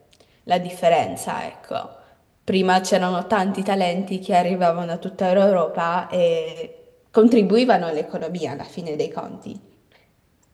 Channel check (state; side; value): identical; both; correlation 1.00